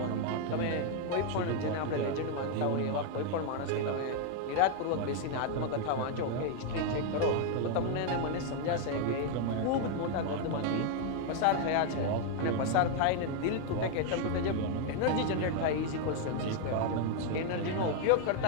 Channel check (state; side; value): different; both; correlation 0.00